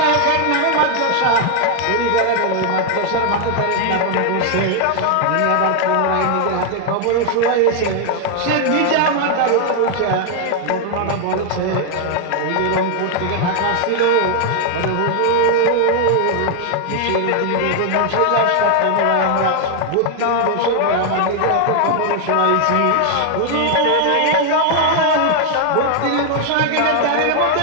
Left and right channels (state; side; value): different; both; correlation 0.00